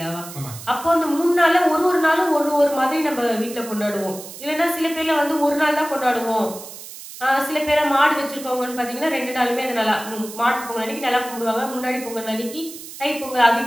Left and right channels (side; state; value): right; noise; hiss, 14 dB below the sound